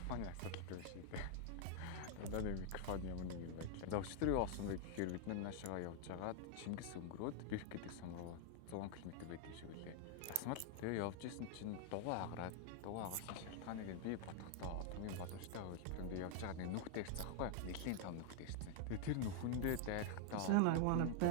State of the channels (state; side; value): different; both; correlation 0.00